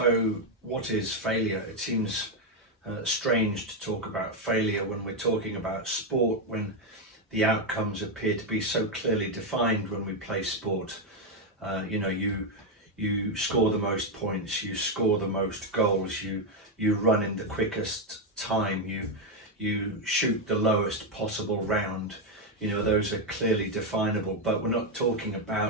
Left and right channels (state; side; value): normal; both; correlation 0.04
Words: what is failure? It seems strange to talk about failure when we're talking about sport, when the outcomes appear to be so clearly defined when we play sport. You score the most points, you score the most goals, you run in the quickest time, you shoot the lowest possible round. Those are clearly definable, but we're not talking